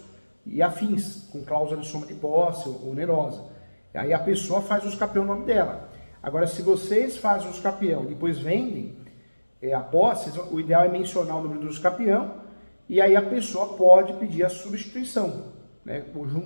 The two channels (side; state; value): both; inverted; correlation -1.00